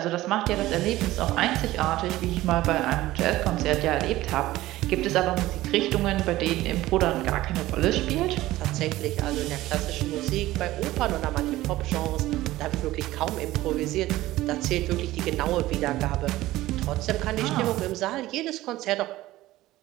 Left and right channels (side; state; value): left; quieter; 16.6 dB